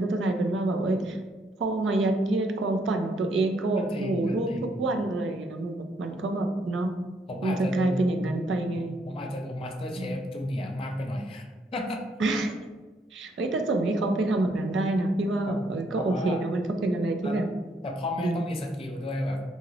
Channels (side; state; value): both; normal; correlation 0.72